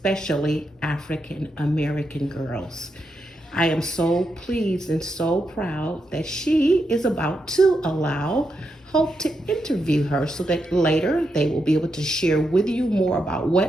African American girls. I am so pleased and so proud that she is about to allow Hope to interview her so that later they will be able to share with you more about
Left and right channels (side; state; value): both; normal; correlation 0.84